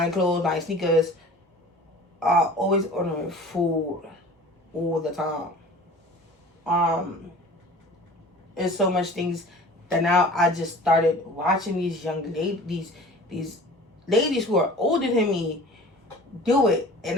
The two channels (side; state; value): both; normal; correlation 0.43